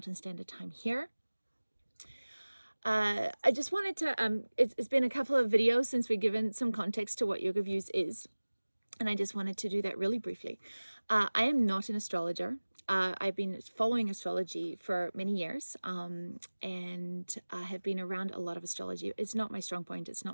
Standard Time here. I just wanted to, it's been a couple of videos since we've given some context to what Yoga Views is, and I just wanted to do that really briefly. I am not an astrologer. I've been following astrology for many years, and I have been around a lot of astrology. It's not my strong point. It's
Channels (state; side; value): inverted; both; correlation -1.00